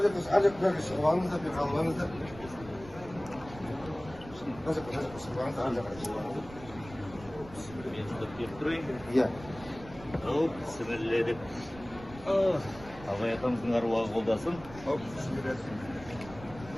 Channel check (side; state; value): right; noise; rumble, 17 dB below the sound